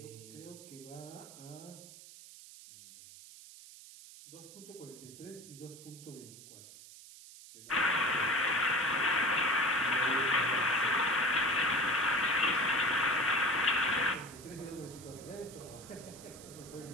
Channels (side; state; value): right; noise; hiss, 17 dB below the sound